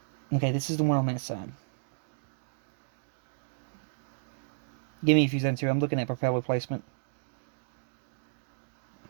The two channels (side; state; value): left; silent; digital silence